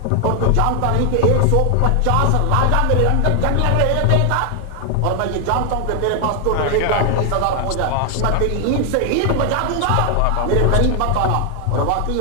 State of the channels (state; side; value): different; both; correlation 0.00